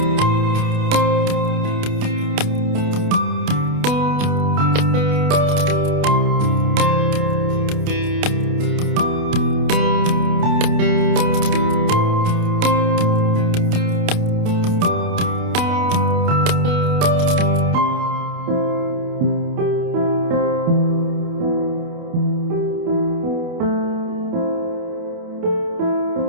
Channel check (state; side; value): late; left; 28 ms